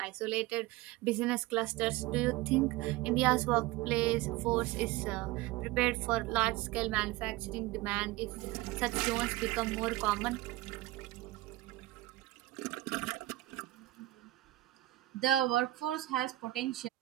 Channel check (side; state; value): left; quieter; 17.9 dB